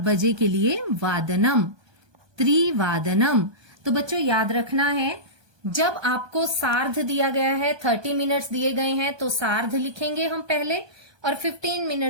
के लिए वादनम, त्रिवादनम। तो बच्चों याद रखना है, जब आपको सार्ध दिया गया है, 30 मिनट्स दिए गए हैं तो सार्ध लिखेंगे हम पहले, और 15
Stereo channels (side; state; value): left; late; 1.2 ms